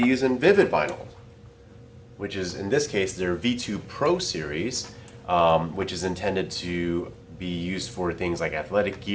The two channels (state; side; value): identical; both; correlation 1.00